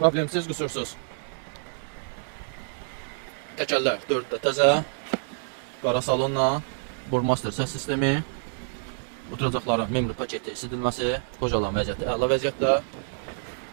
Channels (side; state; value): left; silent; 60 dB below the other